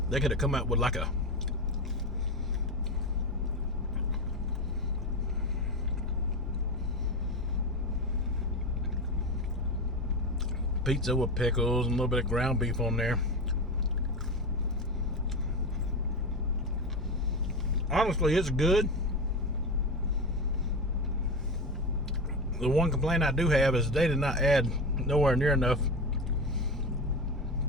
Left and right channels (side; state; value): both; normal; correlation 0.20